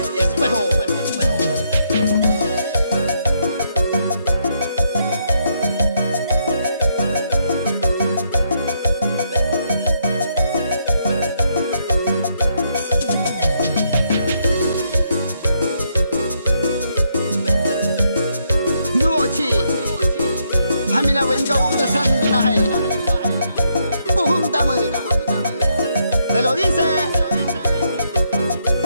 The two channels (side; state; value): both; inverted; correlation -0.76